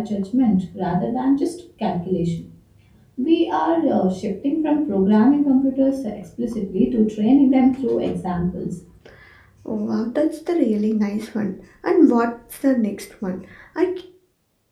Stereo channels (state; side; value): identical; both; correlation 1.00